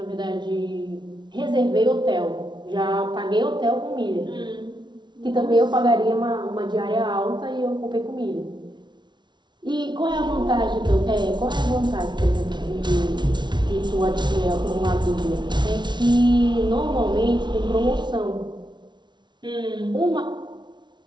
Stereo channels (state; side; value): late; left; 0.22 ms